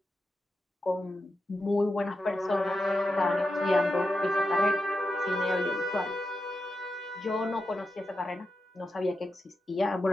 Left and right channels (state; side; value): normal; both; correlation 0.88